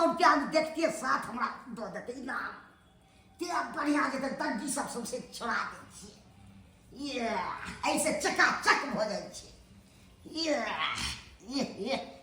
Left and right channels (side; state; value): both; identical; correlation 1.00